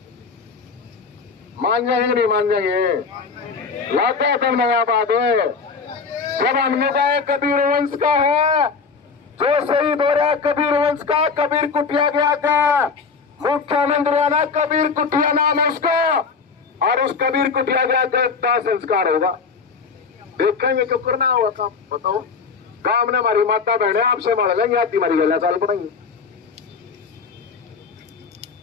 जाएंगे नहीं मान जाएंगे लाते तो नया बात है। जब हमने कहा कबीर वंश का है जो शहीद हो रहा है कबीर वंश का कबीर कुटिया गया का मुख्यमंत्री आना कबीर कुटिया नाम है उसका और उस कबीर कुटिया गया का संस्कार होगा। देखेंगे क्यों करना हुआ काम बताओ। काम ने हमारी माता बहने आपसे मार लेंगे आती हमारी गला चाल पड़ेंगे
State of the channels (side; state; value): right; quieter; 5.2 dB